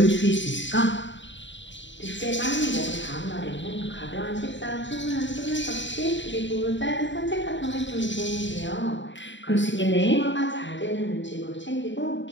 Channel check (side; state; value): right; late; 0.54 ms